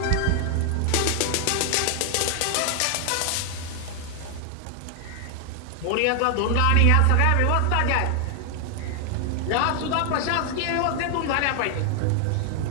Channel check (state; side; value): different; both; correlation 0.00